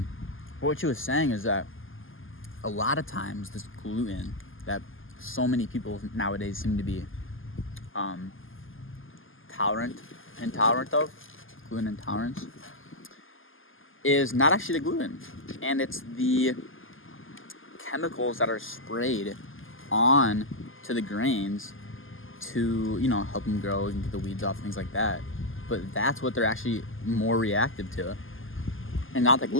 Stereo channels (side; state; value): right; late; 0.59 ms